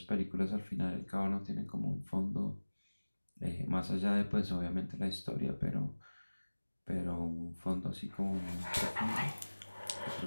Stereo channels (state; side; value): inverted; both; correlation -1.00